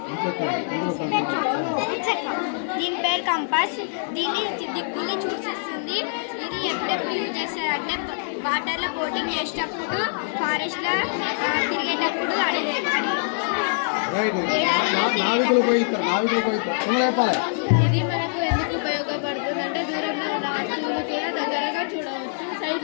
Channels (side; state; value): right; silent; digital silence